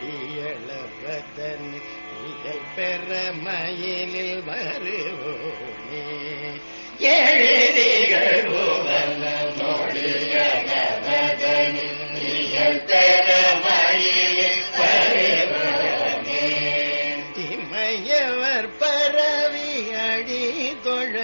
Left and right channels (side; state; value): both; inverted; correlation -1.00